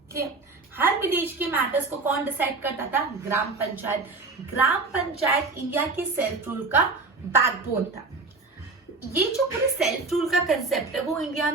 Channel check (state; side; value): quieter; left; 3.8 dB